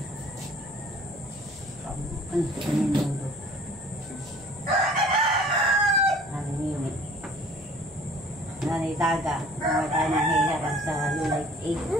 Nanay Daga, mga tayo ng hiharap sa Lulay 8.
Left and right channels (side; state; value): both; normal; correlation 0.51